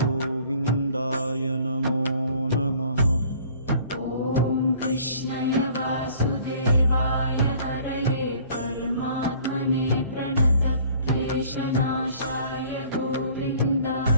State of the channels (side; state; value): both; inverted; correlation -0.53